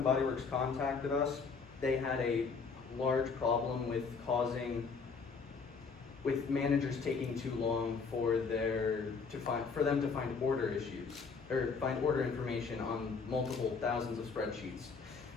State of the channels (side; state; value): right; quieter; 5.1 dB